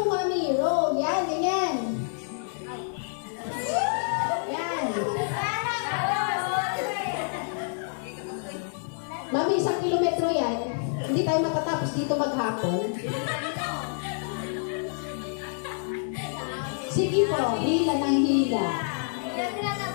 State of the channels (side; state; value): right; silent; 60 dB below the other